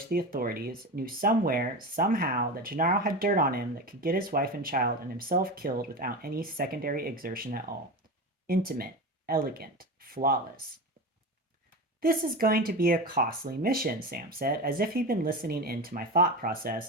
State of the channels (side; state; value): both; normal; correlation 0.25